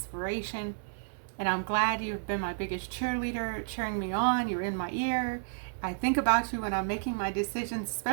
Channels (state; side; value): silent; left; 56 dB below the other